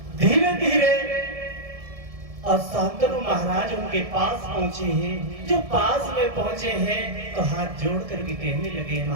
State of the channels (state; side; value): late; left; 1.7 ms